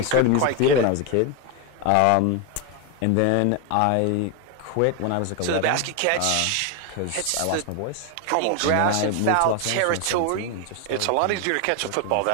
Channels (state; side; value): different; both; correlation 0.01